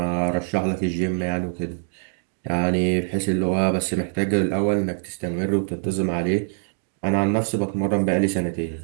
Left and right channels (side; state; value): left; silent; digital silence